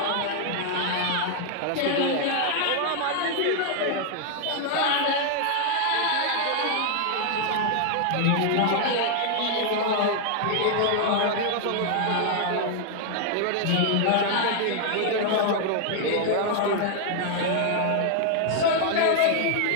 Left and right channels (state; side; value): different; both; correlation 0.00